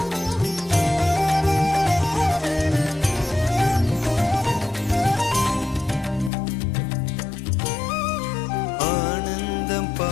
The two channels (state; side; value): drops out; right; at 6.3 s